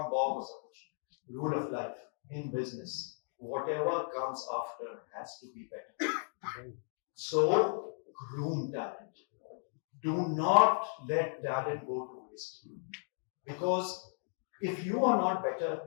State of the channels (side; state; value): right; silent; digital silence